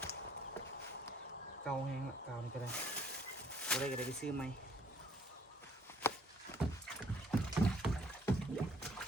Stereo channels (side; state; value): both; normal; correlation 0.62